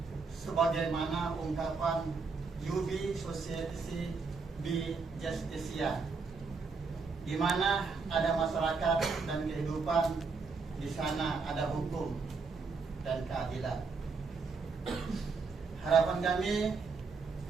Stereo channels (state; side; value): quieter; left; 4.6 dB